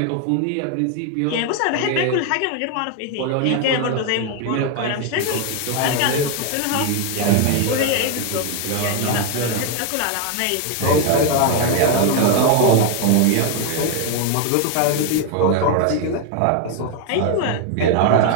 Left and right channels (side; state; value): both; different; correlation 0.01